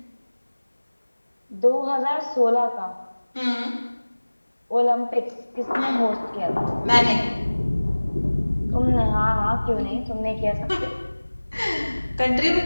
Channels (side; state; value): both; inverted; correlation -1.00